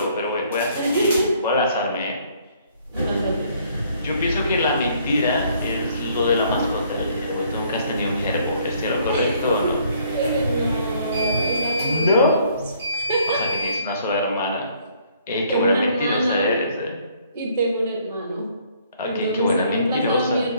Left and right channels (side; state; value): both; inverted; correlation -0.63